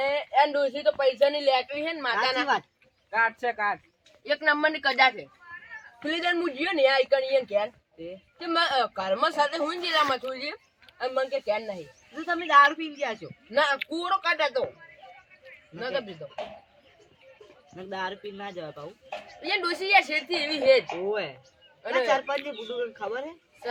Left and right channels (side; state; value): both; identical; correlation 1.00